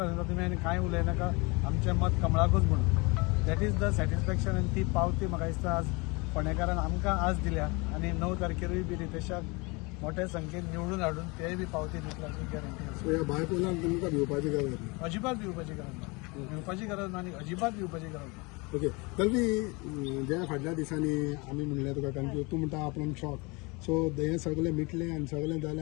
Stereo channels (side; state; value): right; quieter; 27.4 dB